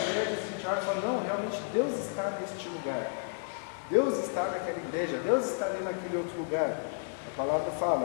a gente olha e fala, não, realmente Deus está neste lugar. Deus está naquela igreja, Deus está ali naquele outro lugar. A palavra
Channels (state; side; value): silent; right; digital silence